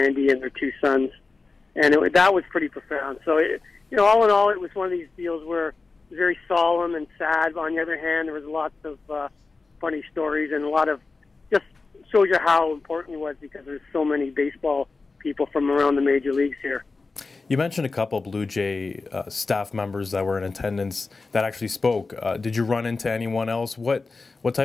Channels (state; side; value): quieter; right; 3.9 dB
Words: and their two sons. And that was pretty profound. So, you know, all in all, it was one of these deals where it was very solemn and sad. On the other hand, there was lots of funny stories and a lot of just shows you how important he was because there's so many baseball people from around the major leagues here. You mentioned a couple Blue Jay staff members that were in attendance that actually spoke. Did you run into anyone else? What